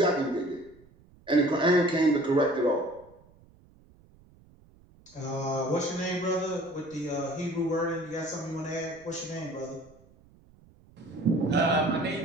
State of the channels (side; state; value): right; noise; rumble, 27 dB below the sound